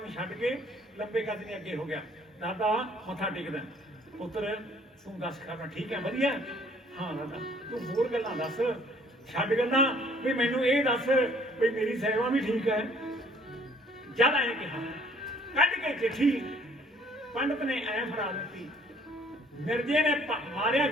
ਨੂੰ ਛੱਡ ਕੇ ਲੰਬੇ ਕੱਦ ਦੇ ਅੱਗੇ ਹੋ ਗਿਆ। ਦਾਦਾ ਮੱਥਾ ਟੇਕਦਾ, ਪੁੱਤਰ ਤੂੰ ਦੱਸ ਖਾਣਾ ਠੀਕ ਹੈ ਵਧੀਆ? ਹਾਂ ਦਾਦਾ ਤੂੰ ਹੋਰ ਗੱਲਾਂ ਦੱਸ, ਛੱਡ ਗੱਲਾਂ ਵੀ ਮੈਨੂੰ ਇਹ ਦੱਸ ਵੀ ਮੇਰੀ ਸੇਵਾ ਵੀ ਠੀਕ ਹੈ। ਜਦ ਆਏ ਕਿਹਾ, ਕੱਢ ਕੇ ਚਿੱਠੀ ਪੰਡਤ ਨੇ ਐ ਫੜਾ ਦਿੱਤੀ। ਮਿਰਜ਼ੇ ਨੇ ਮਾਰਿਆ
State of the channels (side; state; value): both; normal; correlation 0.58